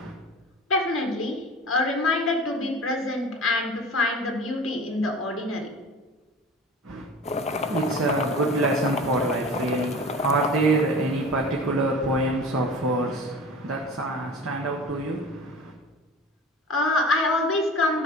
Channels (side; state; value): both; normal; correlation 0.37